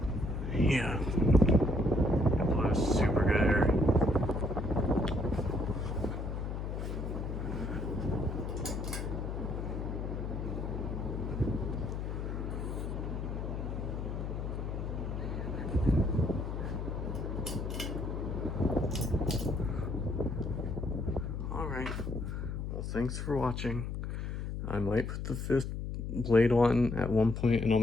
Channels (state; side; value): noise; left; hum, 4 dB below the sound